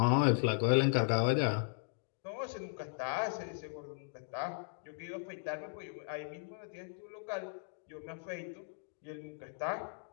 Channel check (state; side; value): silent; right; digital silence